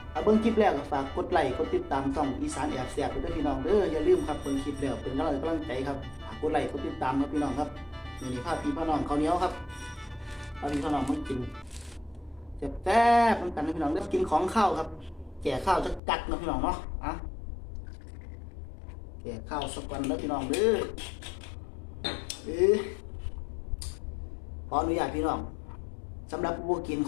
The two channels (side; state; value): right; drops out; at 16.0 s